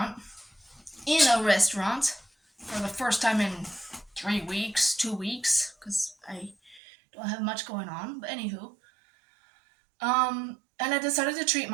for the first time in 3 weeks, 2 weeks, because I don't have much going on. But anywho, and I decided to treat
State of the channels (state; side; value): drops out; left; at 6.8 s